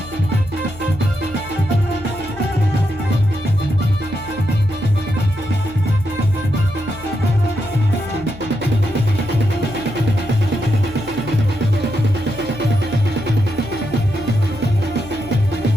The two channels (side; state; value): left; noise; hum, 17 dB below the sound